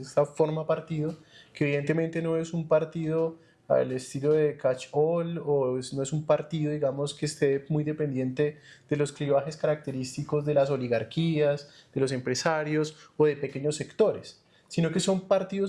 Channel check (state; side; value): identical; both; correlation 1.00